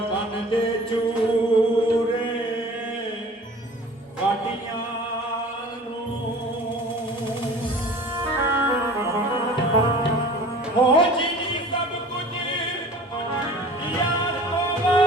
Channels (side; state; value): both; normal; correlation 0.44